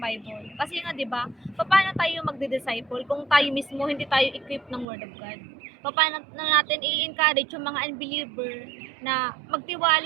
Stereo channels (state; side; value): drops out; left; at 4.9 s